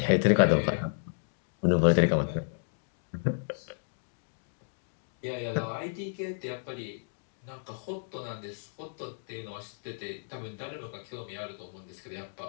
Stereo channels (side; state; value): right; silent; digital silence